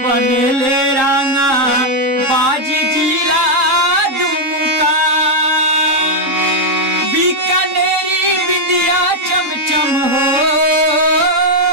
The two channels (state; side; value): late; left; 3.7 ms